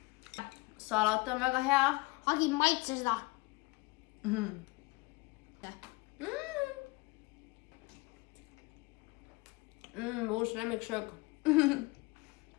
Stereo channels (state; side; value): quieter; right; 24.6 dB